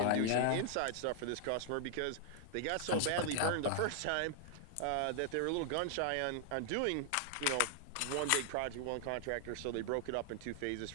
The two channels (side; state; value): both; different; correlation 0.00